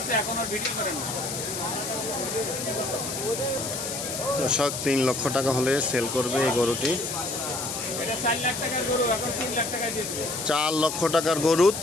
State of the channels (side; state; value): left; noise; hiss, 5 dB below the sound